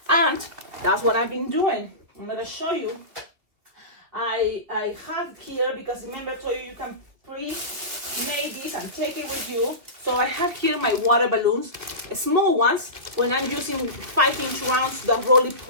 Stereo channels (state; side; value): late; left; 2.9 ms